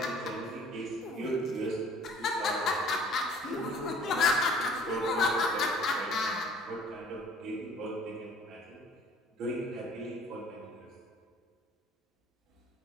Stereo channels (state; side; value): normal; both; correlation 0.52